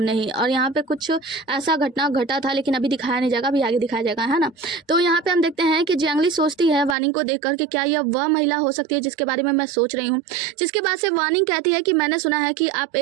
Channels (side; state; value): left; drops out; at 7.0 s